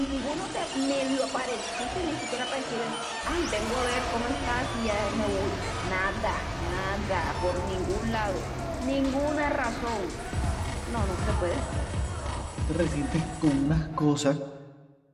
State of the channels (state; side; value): identical; both; correlation 1.00